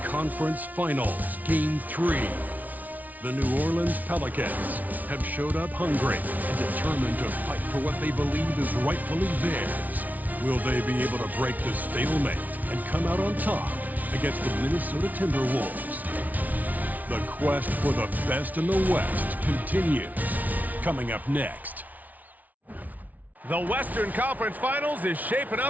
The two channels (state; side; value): late; left; 0.075 ms